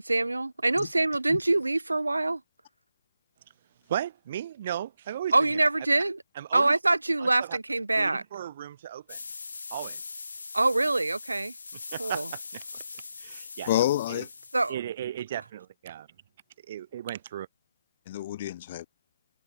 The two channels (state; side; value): inverted; both; correlation -0.90